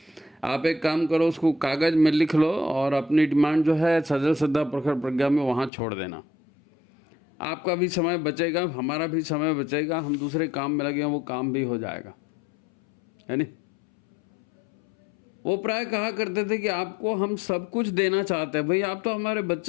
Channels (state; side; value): drops out; right; at 5.7 s